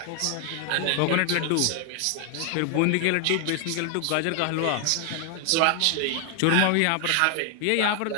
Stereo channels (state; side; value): different; both; correlation 0.00